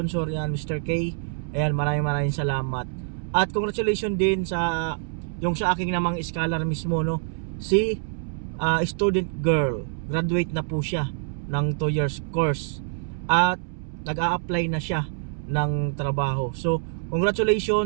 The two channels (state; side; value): silent; left; 61 dB below the other